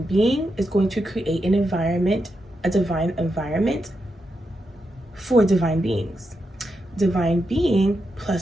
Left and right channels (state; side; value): normal; both; correlation 0.85